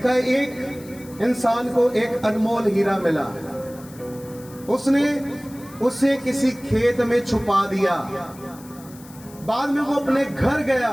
है, एक इंसान को एक अनमोल हीरा मिला, उसने उसे किसी खेत में छुपा दिया। बाद में वो अपने घर गया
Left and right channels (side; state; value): left; noise; hiss, 21 dB below the sound